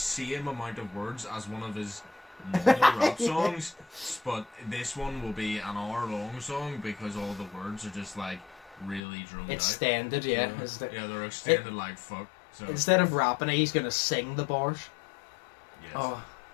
amount of words as one of his normal rap songs, but this one will be an hour-long song because all the words are just like really drummed out. Extended, yeah. Yeah, they're extended like fuck. So instead of rapping, he's gonna sing the bars. yes. Oh,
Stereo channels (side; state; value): right; drops out; at 9.0 s